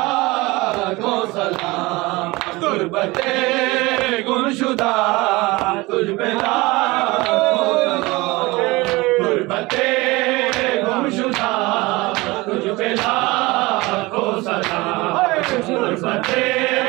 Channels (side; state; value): left; quieter; 22.2 dB